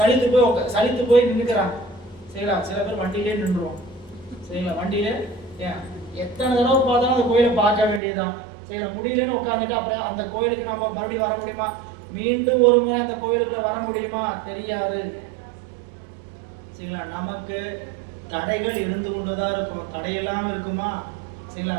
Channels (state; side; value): drops out; left; at 8.0 s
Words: போய் நின்றுக்கிறாங்க. சரிங்களா? சில பேர் வண்டியிலே நின்றுவோம். சரிங்களா? வண்டியிலே ஏன் எத்தனை தடவை பார்த்தாலும் அந்த கோயிலை பார்க்க வேண்டியதுதான். சரிங்களா? முடியலன்னு உட்காந்துட்டு அப்புறம் அந்த கோயிலுக்கு நம்ம மறுபடியும் வர முடியுமா? மீண்டும் ஒரு முறை அந்த கோயிலுக்குள்ள வர முடியுமா? தெரியாது. சரிங்களா? நமக்கு தடைகள் இருந்து கொண்டுதான் இருக்கும். தடை இல்லாமல் இருக்குமா? சரிங்களா?